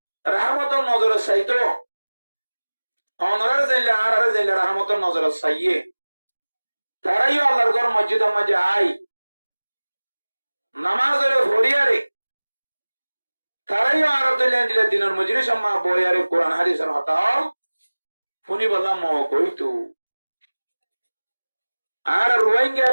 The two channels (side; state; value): both; inverted; correlation -1.00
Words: রাহমতর নজরে চাইতো অনরার যাইলে আর যাইলে রাহমতর নজরে চাইয়ে তারাইও আল্লাহর ঘর মসজিদের মাঝে আই নামাজের ভরিয়ারে তারাইও আর দিলে দিনের মজুরি সম্মা বইয়ারে কোরআন হাদিসের হতাও শুনি বললাম কইতু আর রোহিঙ্গা